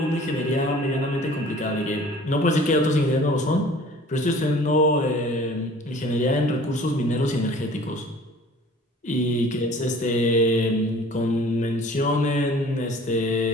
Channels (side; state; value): both; normal; correlation 0.48